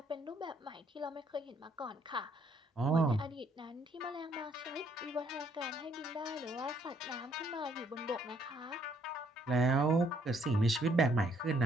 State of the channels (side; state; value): both; normal; correlation 0.67